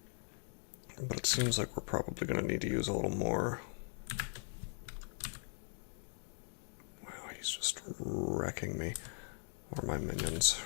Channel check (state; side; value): silent; right; 51 dB below the other